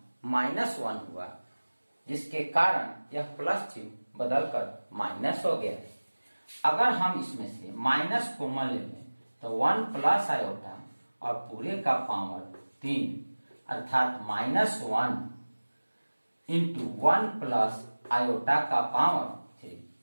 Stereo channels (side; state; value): both; inverted; correlation -1.00